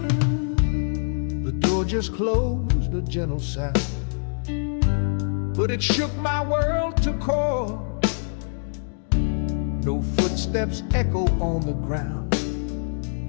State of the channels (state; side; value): silent; right; digital silence